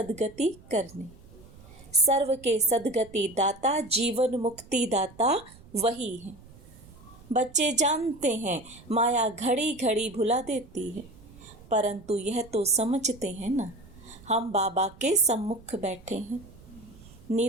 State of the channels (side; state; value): right; noise; rumble, 22 dB below the sound